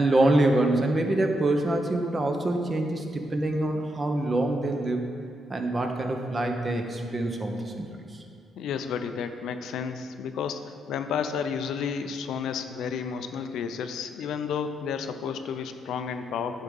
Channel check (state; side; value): normal; both; correlation 0.80